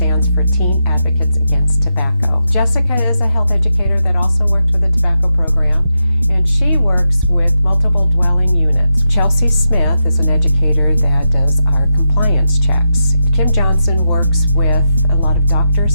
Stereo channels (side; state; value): both; inverted; correlation -0.86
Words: for Teen Advocates Against Tobacco. Jessica is a health educator that also worked with the tobacco program, and she works with multiple dwelling units. Chelsea Smith is an educator that does our compliance checks. Kim Johnson works with a lot of